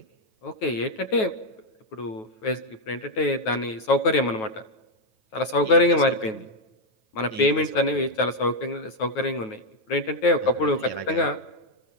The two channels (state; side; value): late; right; 9.3 ms